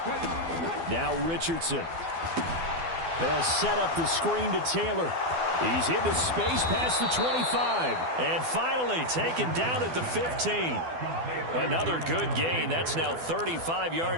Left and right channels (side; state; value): left; late; 12 ms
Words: Now Richardson. They'll set up the screen to Taylor. He's into space past the 25. And finally taken down at the 15. Another good gain. That's now 35